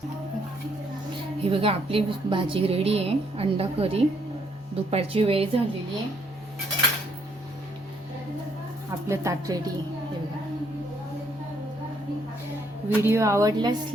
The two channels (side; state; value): both; normal; correlation 0.70